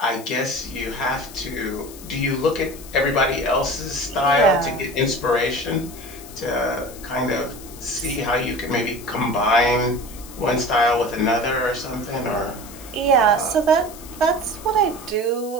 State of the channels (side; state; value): left; noise; hiss, 17 dB below the sound